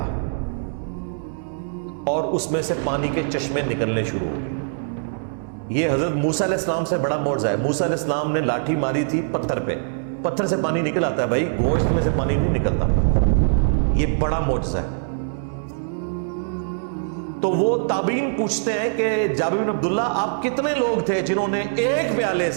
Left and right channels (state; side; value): silent; left; 61 dB below the other